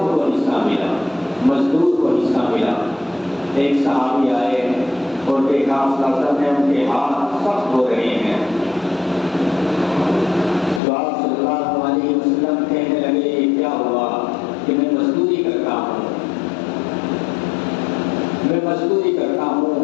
کو حصہ ملا، مزدور کو حصہ ملا۔ ایک صحابی آئے اور دیکھا آپ صلی اللہ علیہ وسلم نے ان کے ہاتھ سخت ہو رہے ہیں، تو آپ صلی اللہ علیہ وسلم کہنے لگے یہ کیا ہوا؟ کہ میں مزدوری کرتا ہوں، میں مزدوری کرتا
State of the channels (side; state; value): right; drops out; at 10.8 s